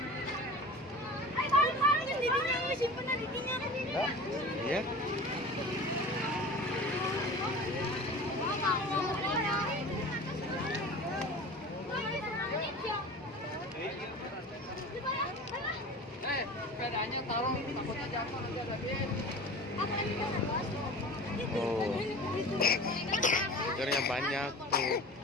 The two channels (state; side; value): normal; both; correlation 0.37